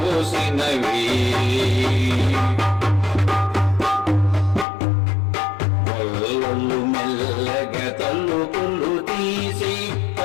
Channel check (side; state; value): right; drops out; at 4.7 s